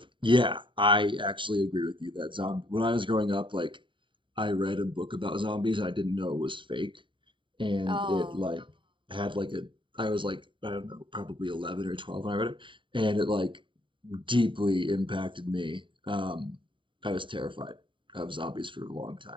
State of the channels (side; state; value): left; late; 0.24 ms